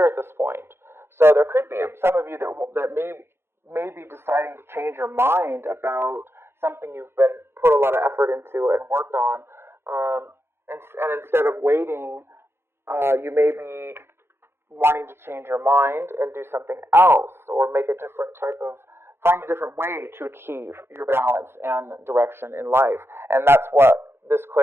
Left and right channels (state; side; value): late; left; 0.12 ms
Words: at this point. So there could be some of you that may be deciding to change your mind about something you've been put a lot of effort into and worked on. And instead of waiting, you may be wanting to change your mind and do something else, or find a different way to achieve your balance and direction in life. And that's what this